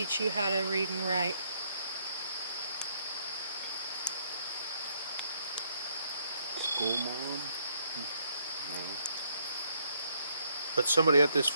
you how to read and write? School mom? No. But somebody at this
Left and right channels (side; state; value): both; inverted; correlation -0.71